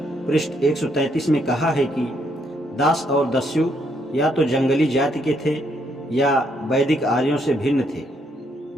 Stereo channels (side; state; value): both; normal; correlation 0.73